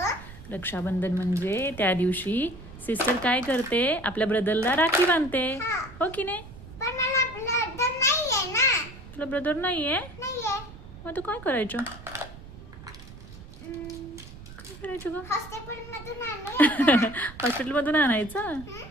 रक्षाबंधन म्हणजे त्या दिवशी सिस्टर काय करते, आपल्या ब्रदरला राखी बांधते, हा. हो की नाही? पण मला ब्लड नाहीये ना. तुला ब्रदर नाहीये? नाहीये. मग तू काय करायचं? काय करायचं ग? हॉस्पिटल मधून आणूया. हॉस्पिटलमधून आणायचं?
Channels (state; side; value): noise; right; rumble, 16 dB below the sound